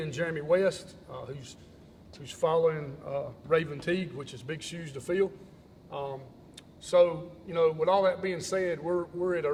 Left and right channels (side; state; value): both; identical; correlation 1.00